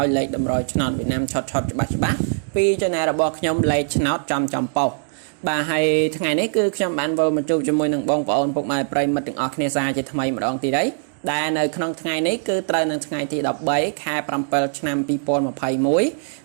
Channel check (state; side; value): silent; left; digital silence